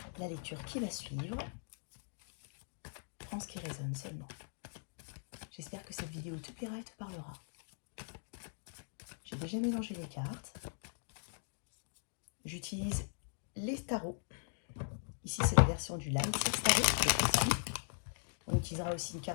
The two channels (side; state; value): right; silent; digital silence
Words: la lecture qui va suivre. Prends ce qui résonne seulement. J'espère que cette vidéo te plaira et te parlera. J'ai déjà mélangé les cartes. J'utilise les tarots. Ici, c'est la version du Light Six Tarot. On utilisera aussi une